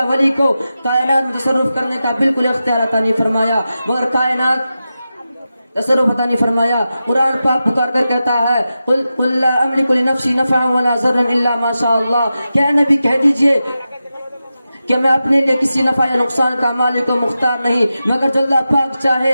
ولی کو کائنات میں تصرف کرنے کا بالکل اختیار عطا نہیں فرمایا، مگر کائنات تصرف عطا نہیں فرمایا. قرآن پاک پکار کر کہتا ہے قل لا املک لنفسی نفعا ولا ضرا الا ما شاء اللہ، کیا نبی کہہ دیجئے کہ میں اپنے لیے کسی نفع یا نقصان کا مالک و مختار نہیں مگر جو اللہ پاک چاہے.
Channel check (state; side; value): inverted; both; correlation -0.92